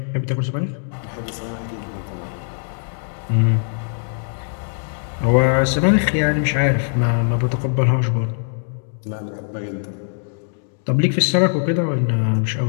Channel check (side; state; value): right; silent; digital silence